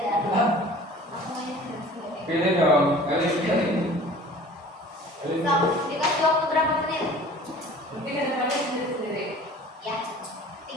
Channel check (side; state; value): both; normal; correlation 0.45